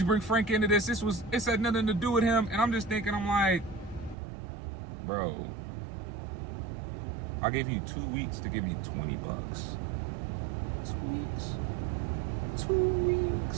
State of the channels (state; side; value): drops out; left; at 4.2 s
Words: Frank into this? It had nothing to do with him. And I'm just thinking, I'm like, bro, I gave you 2 weeks to give me $20. 2 weeks. $20.